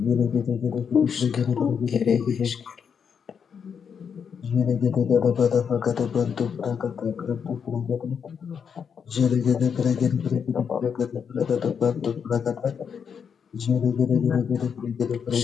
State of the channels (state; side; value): quieter; right; 6.9 dB